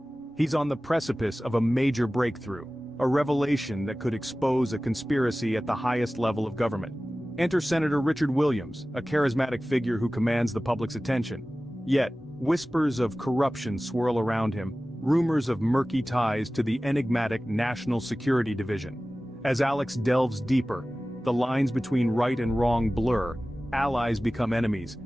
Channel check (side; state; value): both; normal; correlation 0.97